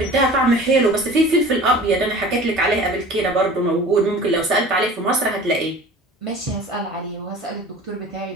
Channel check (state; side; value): normal; both; correlation 0.42